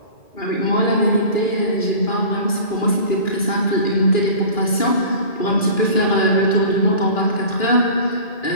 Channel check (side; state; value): right; late; 2.4 ms